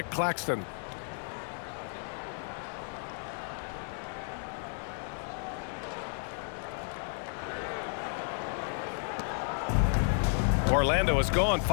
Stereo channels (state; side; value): silent; right; 56 dB below the other